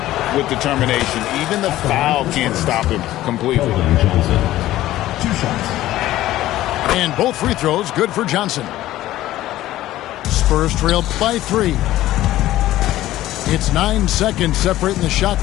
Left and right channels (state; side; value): quieter; right; 14.9 dB